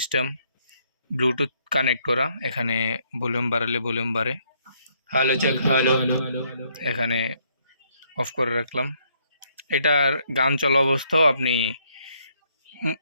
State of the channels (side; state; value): both; inverted; correlation -0.70